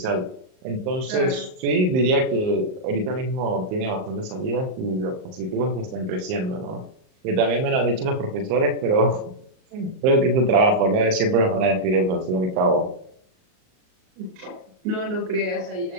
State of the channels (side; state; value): left; late; 38 ms